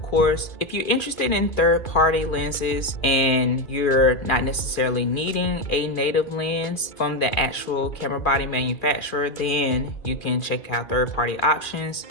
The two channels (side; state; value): right; late; 2.4 ms